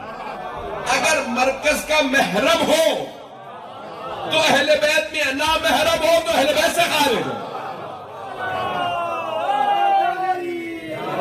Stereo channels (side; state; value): both; identical; correlation 1.00